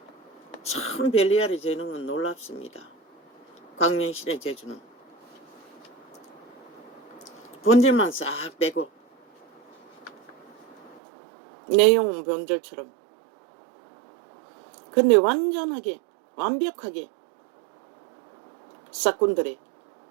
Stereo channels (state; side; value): drops out; left; at 11.0 s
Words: 참 벨리알의 재능은 놀랍습니다. 광명신의 재주는 본질만 싹 빼고 내용은 본질처럼, 근데 완전하게 완벽하게 싹군들의